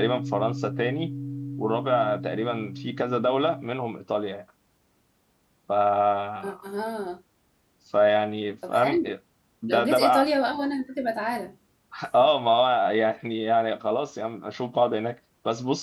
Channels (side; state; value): both; identical; correlation 1.00